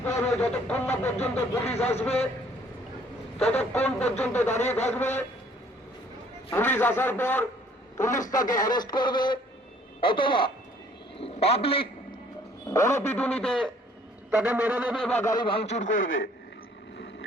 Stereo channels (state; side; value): normal; both; correlation 0.59